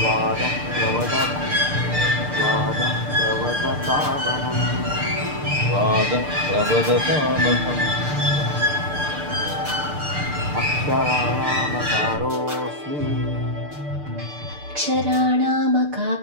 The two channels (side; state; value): left; late; 6.7 ms